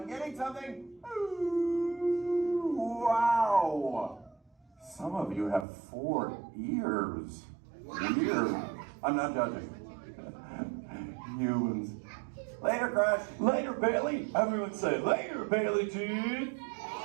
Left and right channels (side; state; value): left; drops out; at 5.7 s